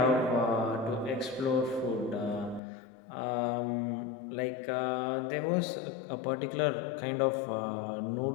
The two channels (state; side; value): drops out; right; at 2.6 s